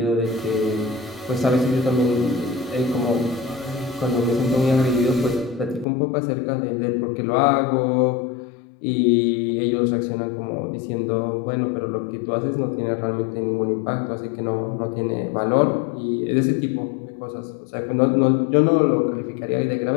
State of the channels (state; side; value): drops out; right; at 5.9 s